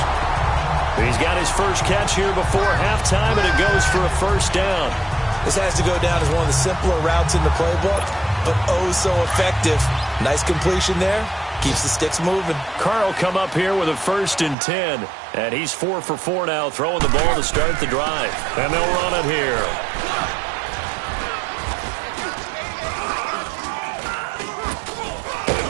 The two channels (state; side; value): drops out; left; at 14.6 s